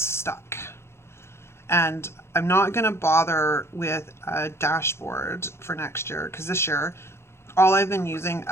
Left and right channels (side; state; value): right; late; 0.12 ms